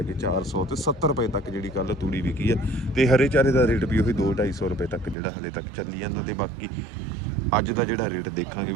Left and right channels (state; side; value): drops out; left; at 5.2 s